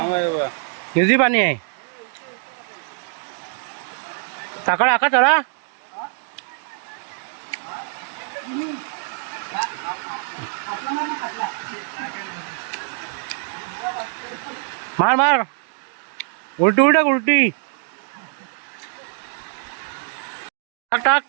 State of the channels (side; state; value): left; silent; 59 dB below the other